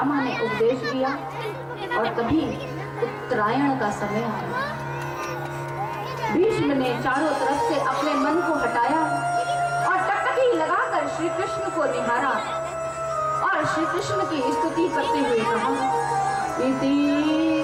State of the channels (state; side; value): identical; both; correlation 1.00